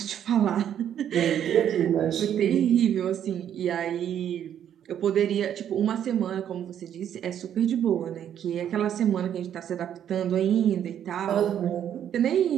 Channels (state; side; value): quieter; left; 9.8 dB